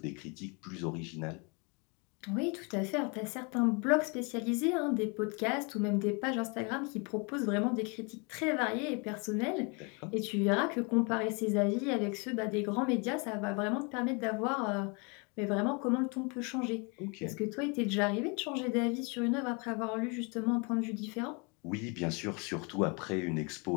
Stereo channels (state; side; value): quieter; right; 32.1 dB